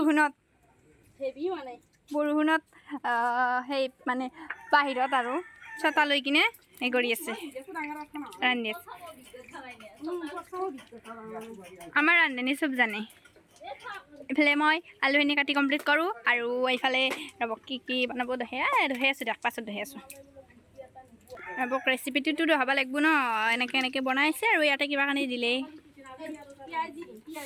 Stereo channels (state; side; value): identical; both; correlation 1.00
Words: সেই মানে বাহিৰত আৰু ছটা লৈ কিনে এই কৰি আছে ৰান্ধি আছে আমাৰ ৰান্ধনী চব জানে এইফালে মই আলুখিনি কাটি কমপ্লিট কৰোঁ আৰু এইফালে ৰ'ব কি বনাব দহে আছোঁ দিয়ক পাছত দহে আছোঁ ৰ'বক ৰেচিপিটোতো দহাব লাগিব ন এনেকৈ বনাইছে আৰু ইয়াতে কিবা কানি দিলে